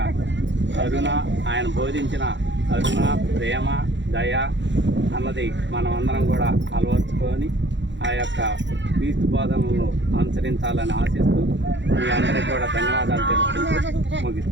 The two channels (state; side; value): late; left; 0.53 ms